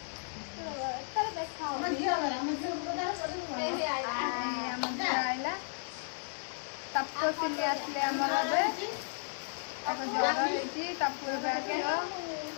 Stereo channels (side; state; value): right; silent; 55 dB below the other